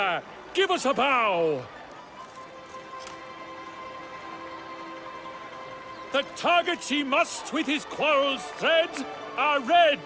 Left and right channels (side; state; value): both; identical; correlation 1.00